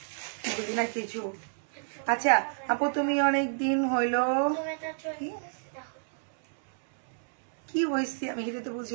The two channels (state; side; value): silent; left; 58 dB below the other